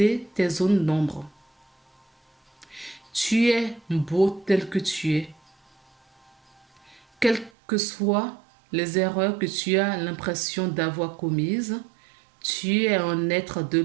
tes zones d'ombre. Tu es beau tel que tu es. Quelles que soient les erreurs que tu as l'impression d'avoir commises, tu es un être de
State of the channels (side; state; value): left; drops out; at 7.5 s